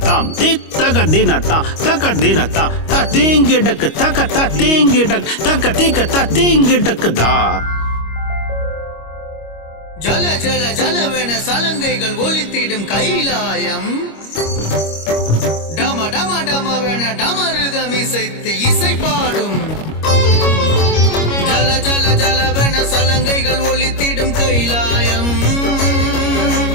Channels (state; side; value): late; right; 25 ms